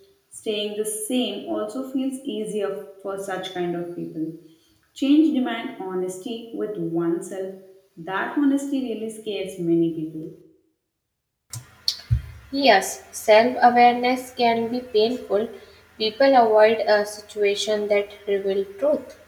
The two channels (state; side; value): identical; both; correlation 1.00